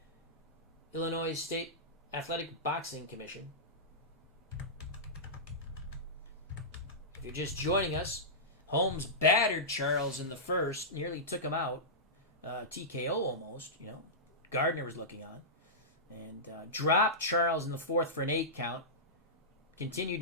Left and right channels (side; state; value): both; normal; correlation -0.16